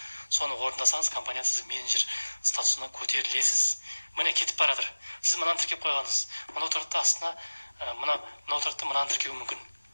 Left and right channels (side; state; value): both; inverted; correlation -1.00